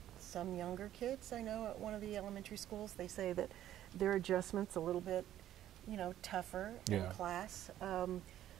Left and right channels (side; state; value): left; quieter; 12.2 dB